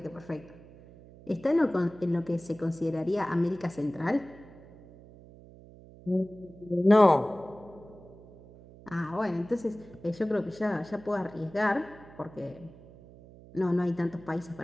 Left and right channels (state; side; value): noise; right; hum, 20 dB below the sound